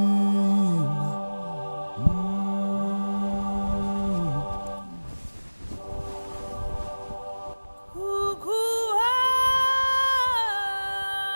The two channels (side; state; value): both; inverted; correlation -1.00